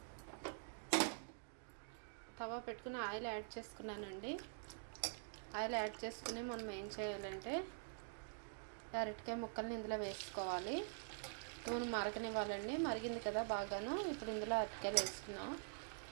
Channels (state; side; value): silent; left; digital silence